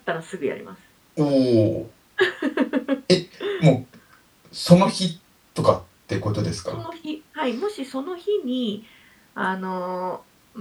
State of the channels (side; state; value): both; identical; correlation 1.00